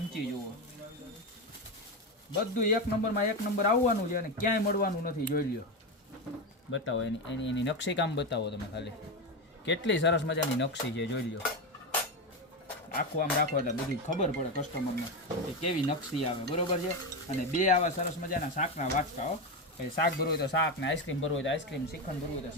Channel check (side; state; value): both; normal; correlation 0.14